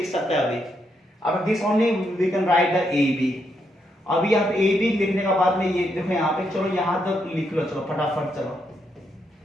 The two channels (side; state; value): both; normal; correlation 0.79